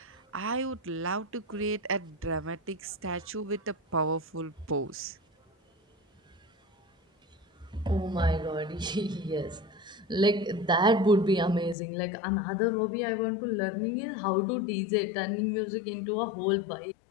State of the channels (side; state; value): right; drops out; at 11.8 s